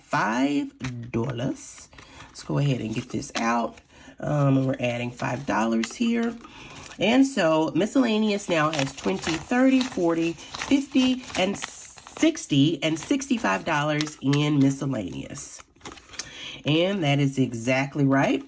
Let's go ahead and get this out. And we're adding $5 here. And so miscellaneous now has 20, 30, 40, 50, and 60, and $65 in miscellaneous. And that is exactly right.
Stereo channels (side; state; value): both; identical; correlation 1.00